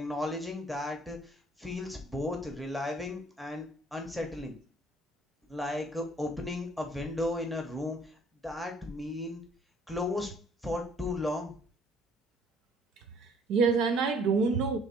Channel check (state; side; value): normal; both; correlation 0.59